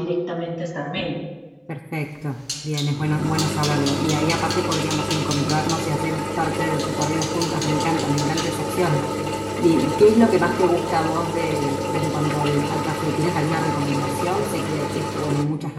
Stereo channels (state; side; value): identical; both; correlation 1.00